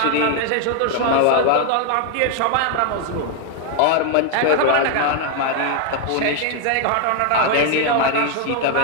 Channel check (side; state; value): both; different; correlation 0.00